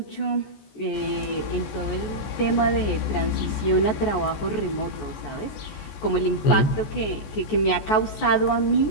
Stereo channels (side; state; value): right; late; 14 ms